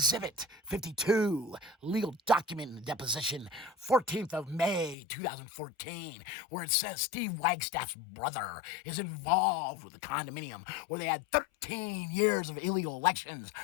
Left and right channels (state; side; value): drops out; right; at 5.0 s